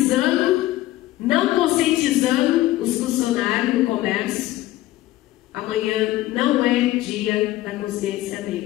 não conscientizando os funcionários do comércio. Amanhã não é Dia da Consciência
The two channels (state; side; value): quieter; right; 16.1 dB